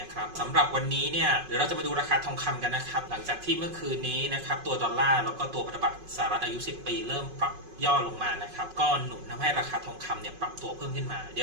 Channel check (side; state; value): left; late; 5.4 ms